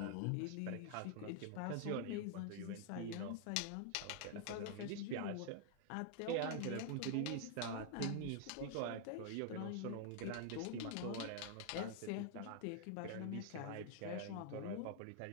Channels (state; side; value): different; both; correlation 0.00